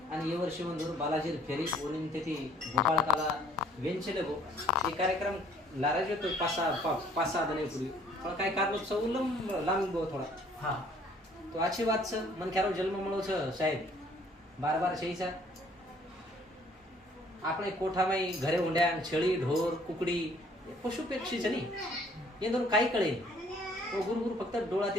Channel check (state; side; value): normal; both; correlation 0.59